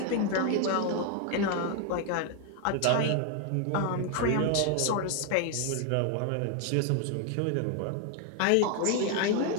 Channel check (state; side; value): different; both; correlation 0.01